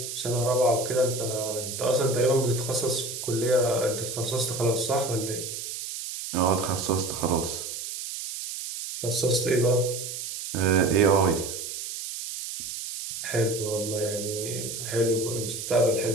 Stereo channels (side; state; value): right; noise; hiss, 7 dB below the sound